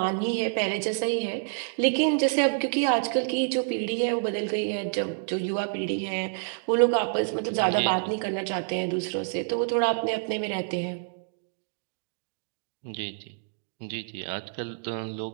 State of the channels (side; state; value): left; silent; digital silence